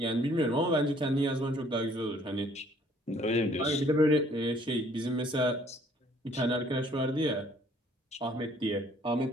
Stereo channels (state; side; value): normal; both; correlation 0.60